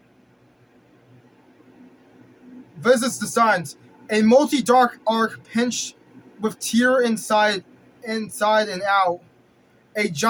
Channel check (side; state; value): both; identical; correlation 1.00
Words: Visits the signs. A multi-dark arc pinched with tear inside and out. A